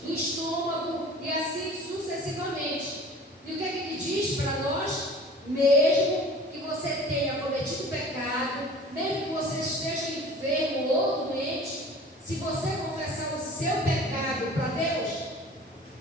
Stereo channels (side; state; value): both; normal; correlation 0.44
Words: no estômago e assim sucessivamente. E o que é que ele diz para nós? Mesmo que você tenha cometido pecado, mesmo que você esteja enfermo ou doente, se você confessar o seu pecado para Deus,